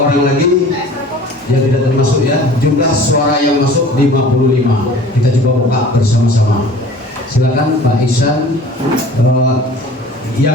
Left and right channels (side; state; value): both; normal; correlation 0.45